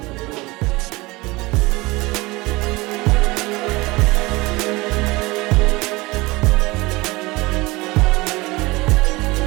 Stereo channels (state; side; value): quieter; left; 22.2 dB